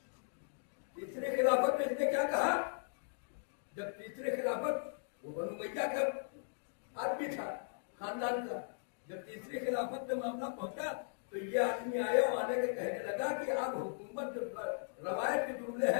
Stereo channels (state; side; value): silent; right; digital silence